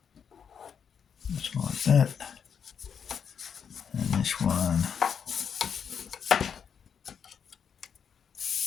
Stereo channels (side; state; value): right; quieter; 7.2 dB